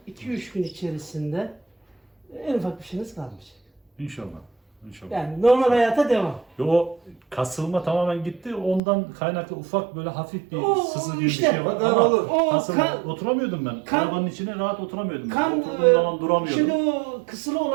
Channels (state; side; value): drops out; left; at 8.8 s